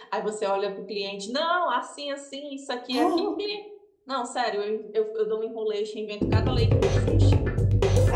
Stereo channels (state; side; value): identical; both; correlation 1.00